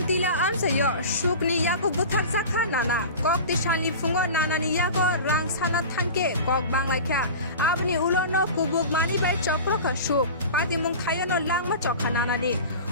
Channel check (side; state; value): both; inverted; correlation -0.34